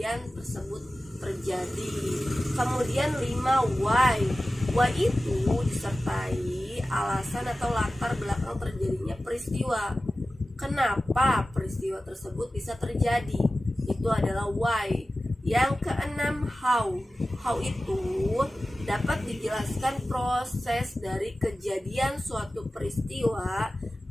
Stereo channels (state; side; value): normal; both; correlation 0.95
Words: tersebut terjadi. Kemudian 5 why. Why itu disertai alasan atau latar belakang terjadinya peristiwa. Kenapa peristiwa tersebut bisa terjadi? Itu adalah why. Yang keenam how. How itu dapat dijelaskan proses dari kejadian suatu peristiwa